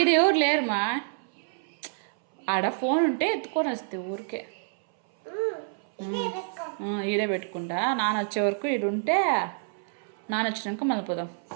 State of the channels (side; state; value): left; silent; 60 dB below the other